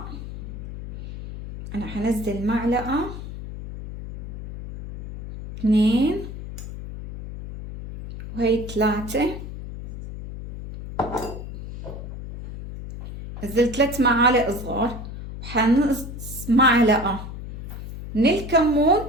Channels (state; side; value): noise; left; hum, 10 dB below the sound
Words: انا حنزل معلقة 2 وهي 3، نزلت 3 معالق صغار، وحنقص معلقة من الكمون،